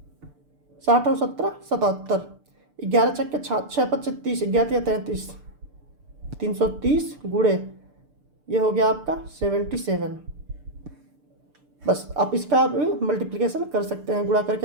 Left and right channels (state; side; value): late; left; 6.7 ms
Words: 60 और 17 77। 11 छक्के 6 5 30, 11 33, 330 गुणे ये हो गया आपका 77। बस आप इसका मल्टीप्लिकेशन कर सकते हैं, गुणा